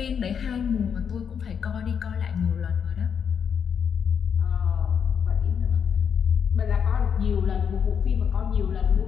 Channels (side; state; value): right; quieter; 7.3 dB